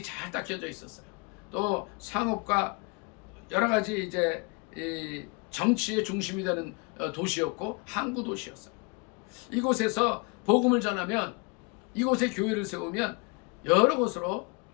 잘 닦여져 있었어요. 또 상업과 여러 가지 이제 이 정치의 중심이 되는 도시였고 항구 도시였어요. 이곳에서 복음을 전하면 이곳에 교회를 세우면 여러 곳으로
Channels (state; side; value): quieter; right; 30.9 dB